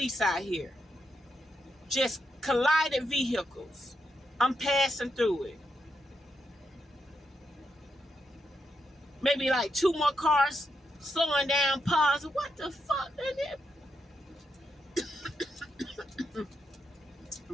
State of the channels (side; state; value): both; normal; correlation 0.83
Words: out here. Just collided vehicles. I'm passing through it. Maybe like 2 more cars slowing down, pausing. What the fuck?